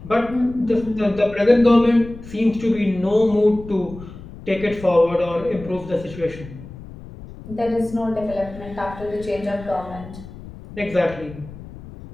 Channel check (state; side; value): noise; left; rumble, 15 dB below the sound